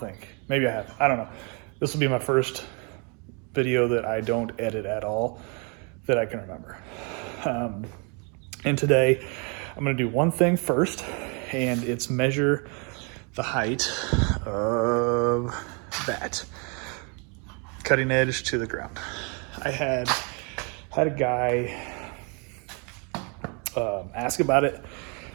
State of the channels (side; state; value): left; quieter; 34.8 dB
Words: Maybe I have. I don't know. This will be my first video that I don't edit at all that I can remember. And today I'm going to do one thing first, and it's measure the height of that cutting edge to the ground. I had a guy ask about it